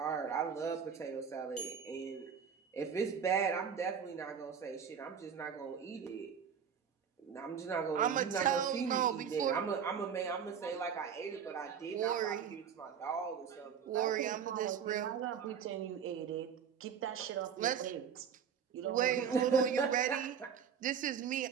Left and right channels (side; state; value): left; quieter; 7.4 dB